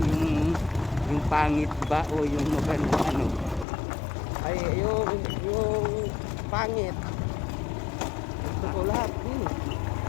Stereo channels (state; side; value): drops out; right; at 3.7 s